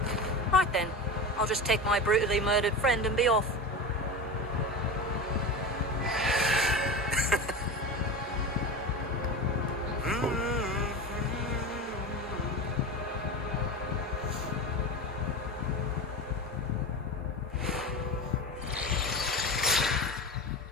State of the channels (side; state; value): both; normal; correlation 0.26